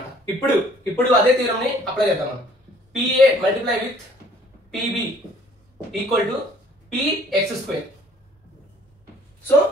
ఇప్పుడు అదే థియరం ని అప్లై చేద్దాం మనం. PA multiply with PB equal to PX². So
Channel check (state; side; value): normal; both; correlation 0.57